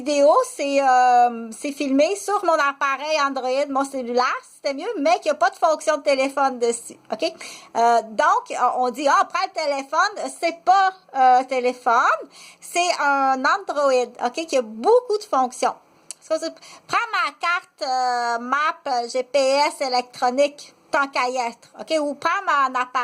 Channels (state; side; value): identical; both; correlation 1.00